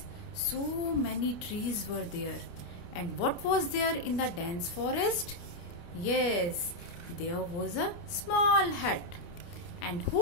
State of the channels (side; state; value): right; late; 29 ms